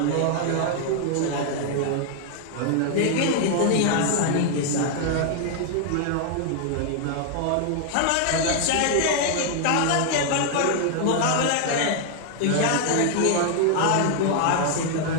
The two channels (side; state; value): both; different; correlation 0.00